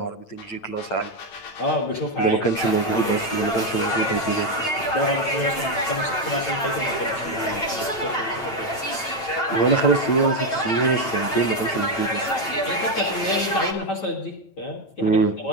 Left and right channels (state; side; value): late; right; 8.9 ms